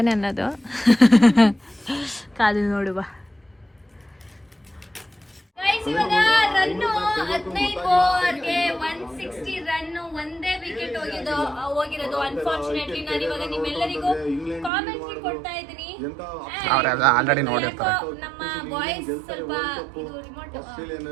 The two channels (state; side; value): drops out; left; at 14.7 s